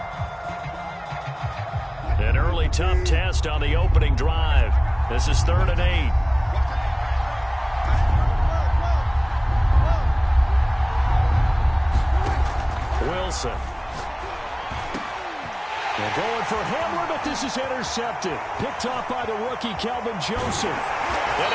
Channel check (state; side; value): identical; both; correlation 1.00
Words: An early tough test on the opening drive. This is 3rd and 8. Wilson. They're going for Hamler, but this is intercepted. Picked off by the rookie, Kelvin Joseph. And